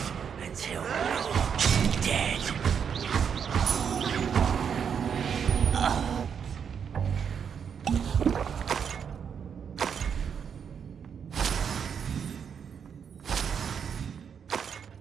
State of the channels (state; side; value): quieter; left; 7.3 dB